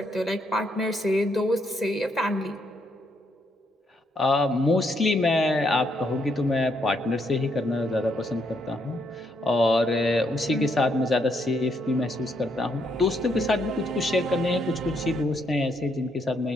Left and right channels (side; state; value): both; normal; correlation 0.75